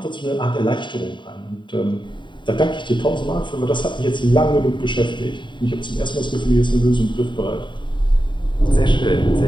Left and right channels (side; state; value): right; late; 0.23 ms